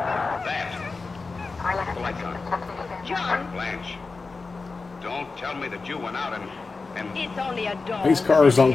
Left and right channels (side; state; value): right; quieter; 4.1 dB